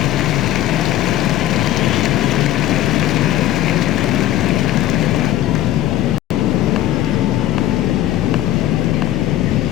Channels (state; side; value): quieter; right; 13.4 dB